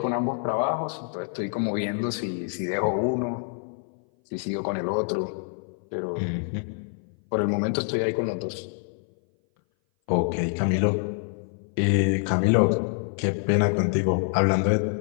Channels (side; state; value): right; silent; 58 dB below the other